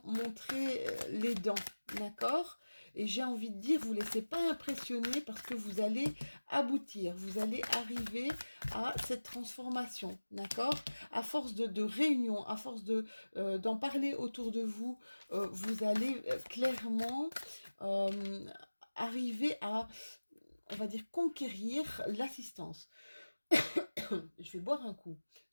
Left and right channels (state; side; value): inverted; both; correlation -1.00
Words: montrer les dents, d'accord? Et j'ai envie de dire, vous ne laissez pas impressionner parce que vous allez aboutir, vous allez arriver à cette transformation, d'accord? À force de réunion, à force d'en parler autour de vous, vous allez clairement arriver à, on va dire, conquérir l'assistance. Je vais boire un coup,